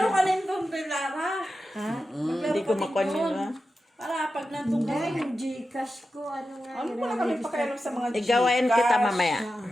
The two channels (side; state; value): both; normal; correlation 0.91